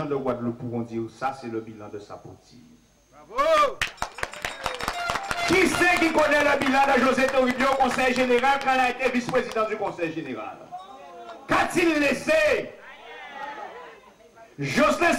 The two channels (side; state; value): both; identical; correlation 1.00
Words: de Guadeloupe pourront dire ça, c'est le bilan de Sapoti. Bravo! Qui c'est qui connaît le bilan de José Toribio au conseil général quand il a été vice-président du conseil général? Qu'a-t-il laissé? Jocelyn